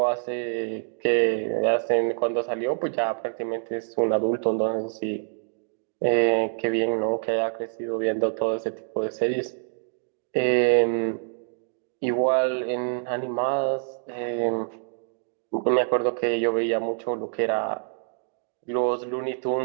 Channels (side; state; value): left; silent; digital silence